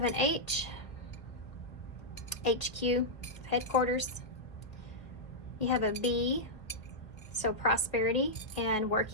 an H. HQ, headquarters. You have a B, so prosperity and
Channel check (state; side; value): late; right; 1.5 ms